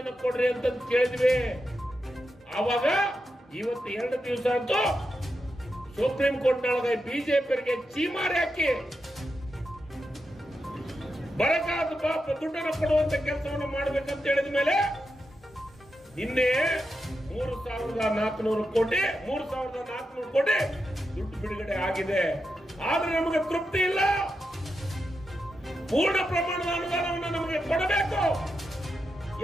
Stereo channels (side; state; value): both; normal; correlation 0.87